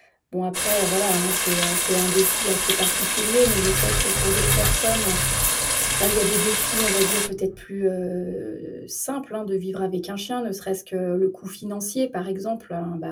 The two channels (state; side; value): identical; both; correlation 1.00